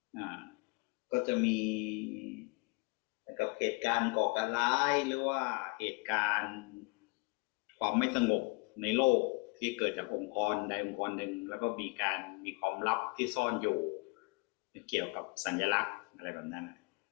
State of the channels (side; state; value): right; quieter; 30.7 dB